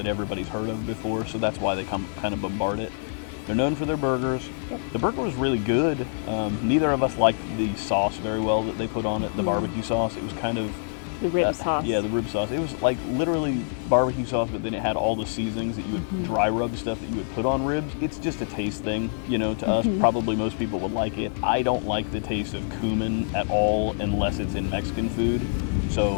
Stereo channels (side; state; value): right; silent; 61 dB below the other